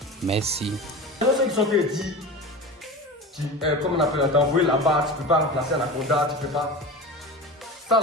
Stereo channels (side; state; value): both; normal; correlation 0.30